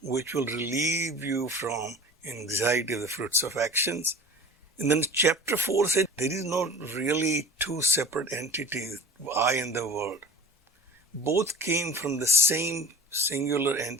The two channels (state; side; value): normal; both; correlation 0.37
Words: which will relieve you from anxiety of the fruits of actions. And then chapter 4 said there is not really two separate entities, I and the world. Both came from the same singular